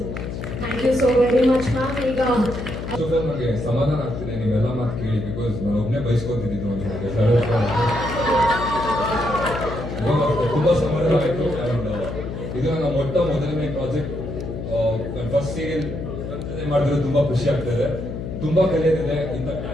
much. Thank you so very much ma'am. ಈಗ ನನಗೆ ಸಮಾಧಾನ ಆಗ್ತಿದೆ ನೀವೆಲ್ಲ ಮಾತು ಕೇಳಿ, ಬಿಕಾಸ್ ನಾನು ಒಬ್ಬನೇ ಬಯಸ್ಕೊತಿದ್ದು ಒಂದು ಹಾಗೆ ತುಂಬಾ ಸಮಾಧಾನ ಆಯ್ತು. ಅಂಡ್ ಇದು ನನ್ನ ಮೊದಲನೇ ಪ್ರಾಜೆಕ್ಟ್, ನನ್ನ ಫಸ್ಟ್ ಸೀರಿಯಲ್ ಮಾಡಿದ್ರೆ ತುಂಬಾ ಖುಷಿ ಆಗ್ತದೆ. ತುಂಬಾ ಕಲಿಯೋದಿದೆ. ಇಂಥ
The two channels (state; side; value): noise; left; hum, 6 dB below the sound